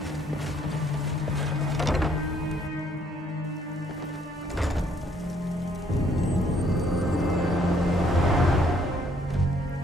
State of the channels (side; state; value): both; normal; correlation 0.66